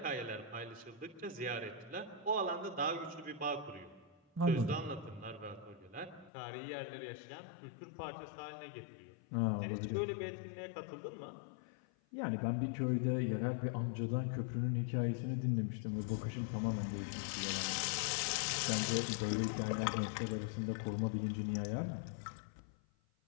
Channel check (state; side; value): drops out; right; at 6.3 s